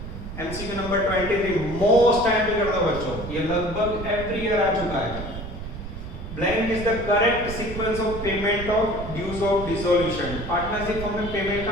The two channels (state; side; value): noise; right; rumble, 9 dB below the sound